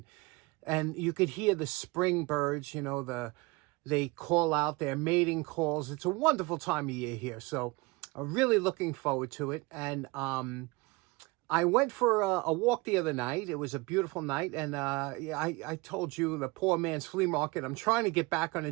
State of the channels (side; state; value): left; quieter; 24.5 dB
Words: you could hear the spring birds. You know, they call out their mating calls. It's a wonderful time of year here, so I'm really looking forward to it. And I went for a walk the other night. It was a beautiful night, and I told you, the poor man's flea market. I'm trying to get back on a